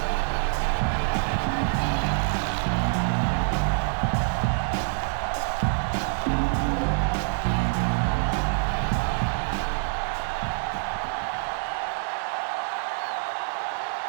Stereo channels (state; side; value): silent; left; 61 dB below the other